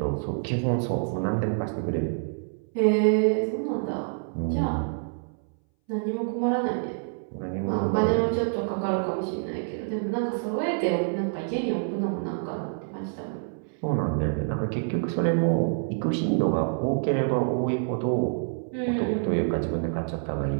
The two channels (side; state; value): left; silent; 60 dB below the other